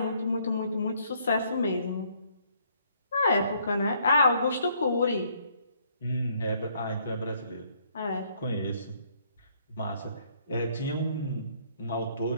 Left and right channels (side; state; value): both; inverted; correlation -0.67